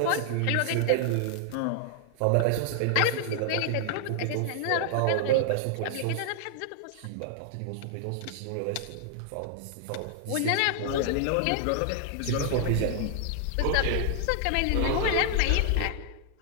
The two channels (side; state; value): both; different; correlation 0.00